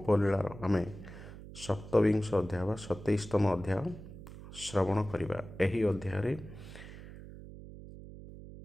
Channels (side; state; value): right; noise; hum, 14 dB below the sound